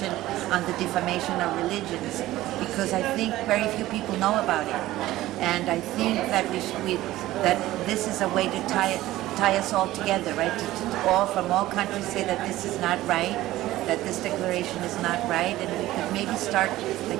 on the defamation of religions, because I think very few people know about it. And I think that that this is a way to tie us all together, right? To all from all countries say that this is not right, that this declaration is not right, and we could maybe start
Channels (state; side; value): quieter; left; 16.0 dB